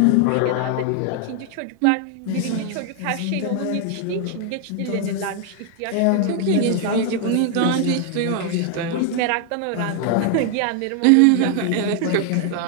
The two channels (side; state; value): both; different; correlation 0.00